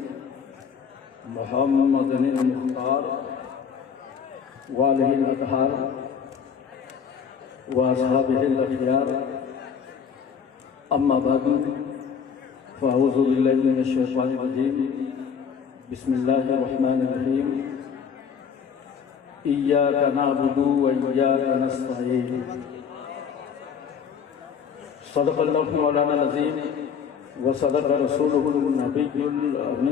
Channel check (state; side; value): quieter; right; 6.9 dB